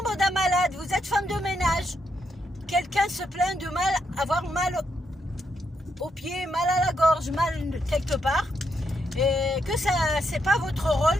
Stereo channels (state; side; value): normal; both; correlation 0.79